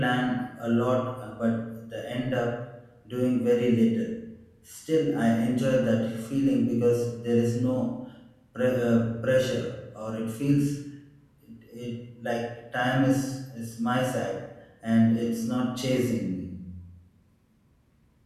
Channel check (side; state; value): both; identical; correlation 1.00